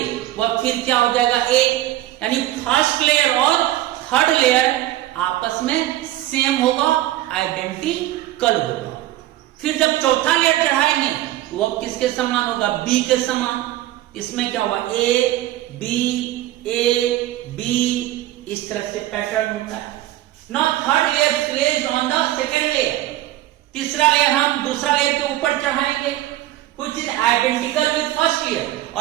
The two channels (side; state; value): left; quieter; 15.1 dB